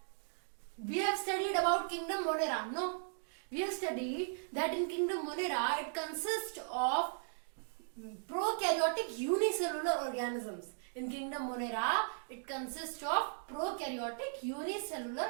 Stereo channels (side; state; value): left; silent; digital silence